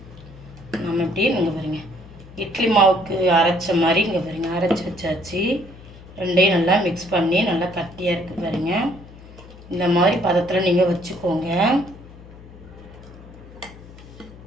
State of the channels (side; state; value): left; noise; hum, 19 dB below the sound